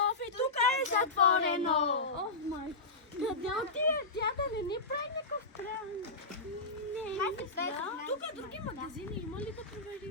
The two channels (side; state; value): right; quieter; 3.3 dB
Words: И тук е затворено. Май. Къде отиде тя да не ни прави някакъв кран? Не. Тук други магазини има ли да